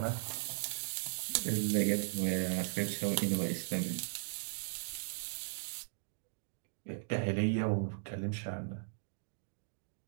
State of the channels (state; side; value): silent; left; digital silence